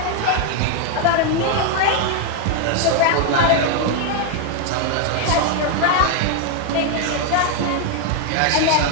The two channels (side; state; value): both; different; correlation 0.00